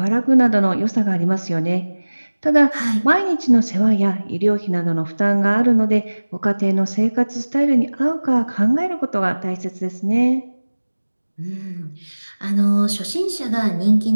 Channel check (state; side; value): inverted; both; correlation -1.00